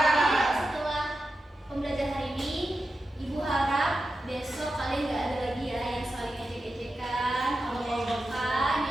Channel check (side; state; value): both; normal; correlation 0.91